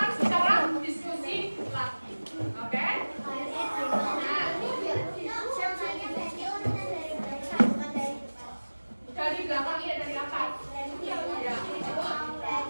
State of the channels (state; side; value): inverted; both; correlation -1.00